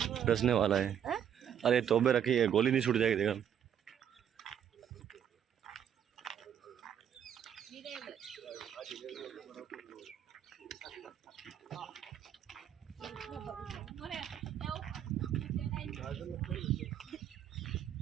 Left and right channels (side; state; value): left; quieter; 9.2 dB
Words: डसने वाला है। अरे तोबे रखी है, गोली नहीं छूट जाएगी देखा।